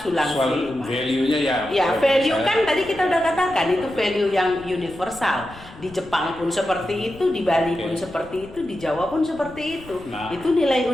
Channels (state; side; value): noise; left; rumble, 20 dB below the sound